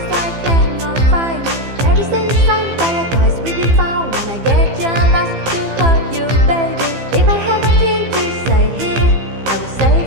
I cannot find you. Every single sign paradise will be found when I get jealous to hurt you, baby. If I have nothing to say here, I will say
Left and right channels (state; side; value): late; left; 15 ms